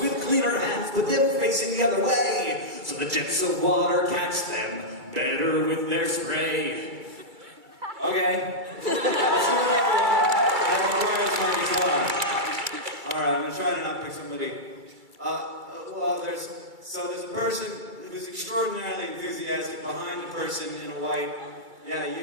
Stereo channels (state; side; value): late; left; 2.3 ms